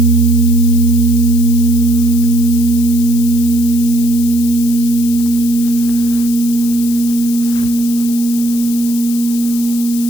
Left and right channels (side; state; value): left; noise; hiss, 11 dB below the sound